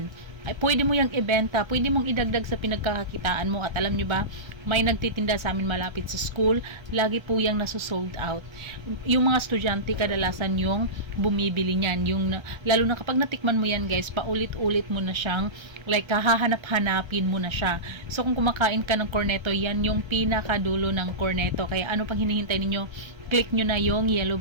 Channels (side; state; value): left; late; 1.3 ms